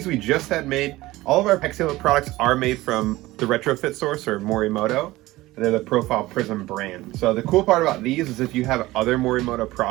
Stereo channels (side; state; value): left; quieter; 18.3 dB